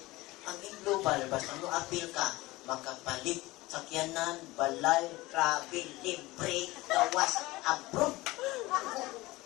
ang Imlubal, basta mo apil ka, makapalit sakyanan, balay, travel, libre, gawas, abroad.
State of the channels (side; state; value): right; quieter; 20.1 dB